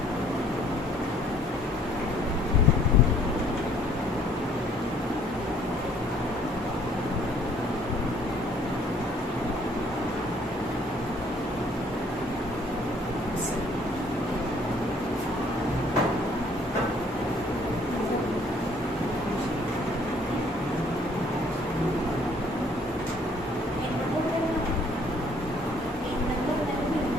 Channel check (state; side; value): normal; both; correlation 0.60